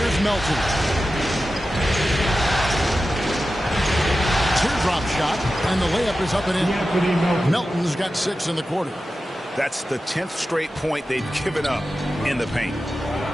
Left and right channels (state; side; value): normal; both; correlation 0.93